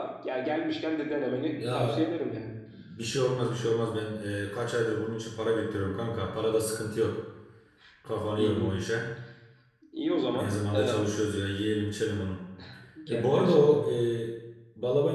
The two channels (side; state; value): both; identical; correlation 1.00